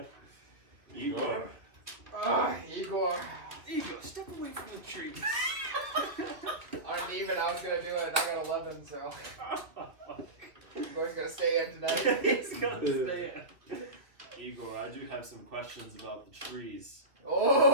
Igor. Igor. Igor, step away from the tree. On an even, I was gonna do it, and I got 11, so. Igor's gonna stay in tonight. He's gonna stay in. Igor, I do have some questions about the trees.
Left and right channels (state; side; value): late; left; 2.4 ms